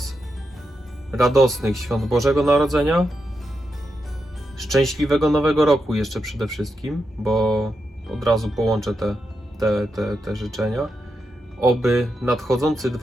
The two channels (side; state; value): both; normal; correlation 0.86